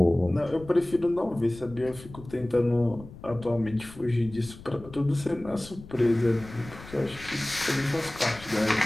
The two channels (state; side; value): noise; left; rumble, 17 dB below the sound